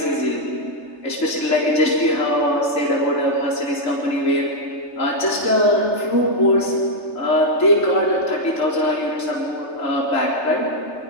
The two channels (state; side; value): late; right; 3.3 ms